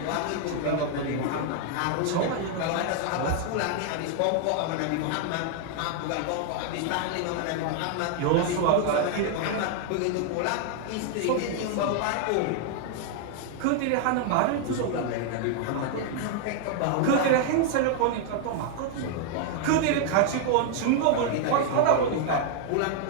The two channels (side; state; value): both; different; correlation 0.00